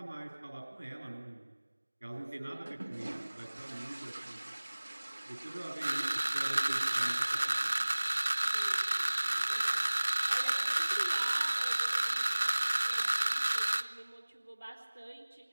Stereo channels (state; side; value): inverted; both; correlation -1.00